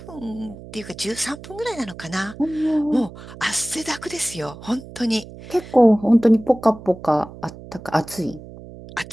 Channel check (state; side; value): noise; right; hum, 16 dB below the sound